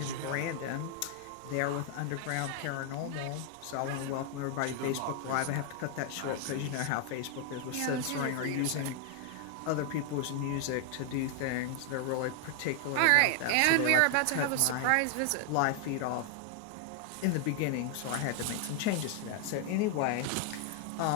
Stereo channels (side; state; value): both; different; correlation 0.00